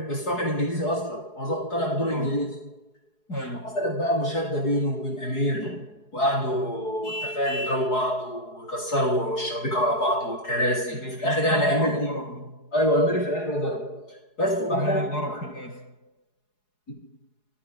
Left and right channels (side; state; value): right; late; 4.7 ms